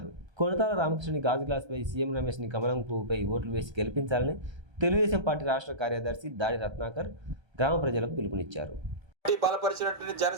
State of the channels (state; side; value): late; left; 1.3 ms